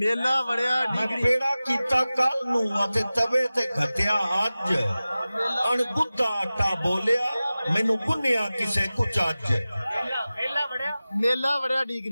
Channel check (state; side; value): inverted; both; correlation -0.96